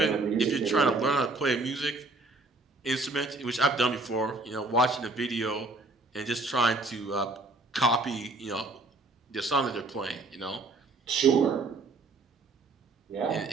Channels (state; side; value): quieter; left; 3.2 dB